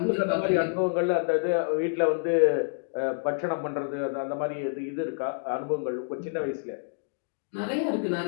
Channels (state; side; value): silent; right; digital silence